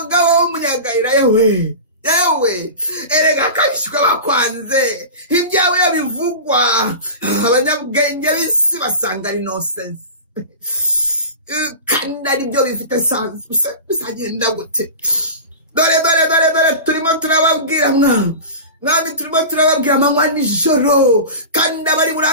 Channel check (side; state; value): both; inverted; correlation -0.30